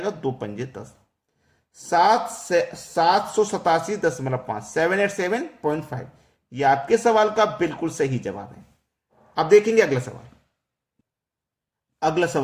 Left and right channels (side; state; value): both; identical; correlation 1.00